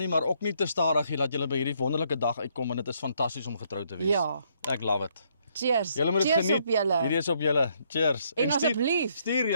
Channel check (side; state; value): both; inverted; correlation -0.71